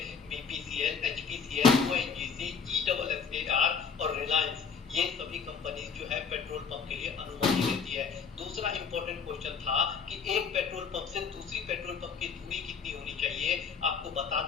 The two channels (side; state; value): right; quieter; 5.9 dB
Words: बीपीसीएल, एचपीसीएल, ओएनजीसी, ईडब्ल्यूएसएआर और रिलायंस, ये सभी कंपनी जो है पेट्रोल पंप के लिए अनुमति देती है। दूसरा इंपॉर्टेंट क्वेश्चन था कि एक पेट्रोल पंप से दूसरी पेट्रोल पंप की दूरी कितनी होनी चाहिए, आपको बता